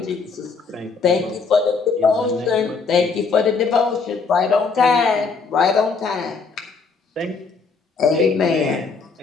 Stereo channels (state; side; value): quieter; right; 4.8 dB